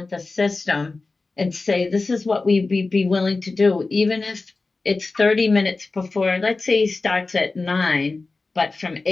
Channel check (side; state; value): right; quieter; 3.6 dB